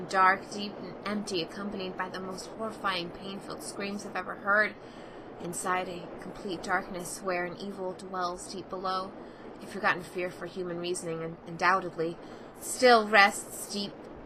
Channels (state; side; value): identical; both; correlation 1.00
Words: dark, deep and empty, accompanied by the most horrifying, pain-filled screams I've ever heard. Inside a complete darkness, where an evil dwells deep below, a forgotten fear for human reasoning, undoubtedly, still rests deep